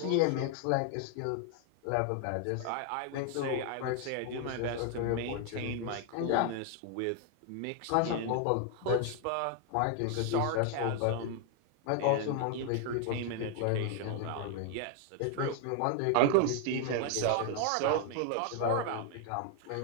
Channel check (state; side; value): different; both; correlation 0.00